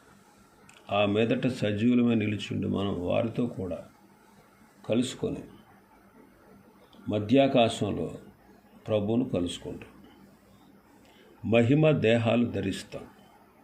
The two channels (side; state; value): both; identical; correlation 1.00